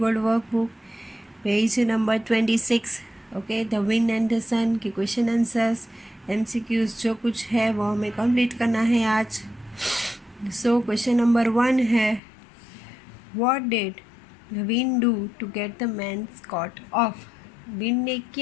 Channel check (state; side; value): drops out; right; at 12.2 s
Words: workbook, page number 26. Okay, the wind and the sun के question answers, MCQs जो कुछ है वो हमें complete करना है आज. So question number 1 है, What did the wind do to get the man's coat off? Wind ने